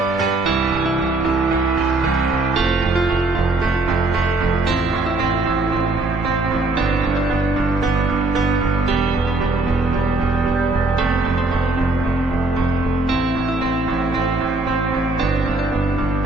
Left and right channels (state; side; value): quieter; left; 3.1 dB